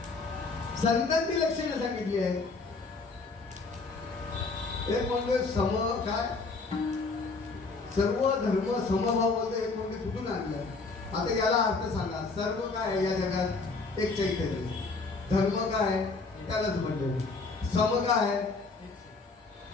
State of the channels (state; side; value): quieter; right; 3.9 dB